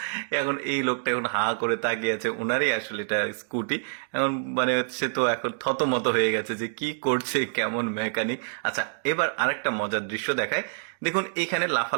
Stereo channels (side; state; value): left; silent; digital silence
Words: এখন এই লোকটা এখন হা করে তাকিয়ে আছে, ওনারই আসলে এটা স্কুটি। এখন মানে সে তো এখন থতমত হয়ে গেছে যে কি করছে, কেমন মেকানিক। আচ্ছা এবার আরেকটা মজার দৃশ্য দেখায়। দেখুন এখানে